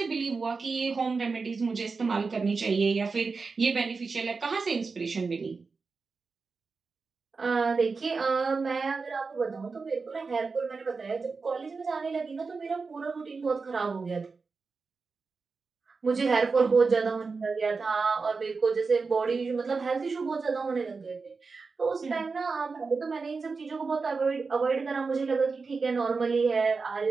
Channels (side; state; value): left; quieter; 4.5 dB